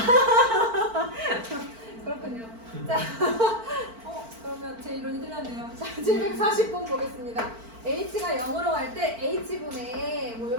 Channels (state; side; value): late; left; 4.5 ms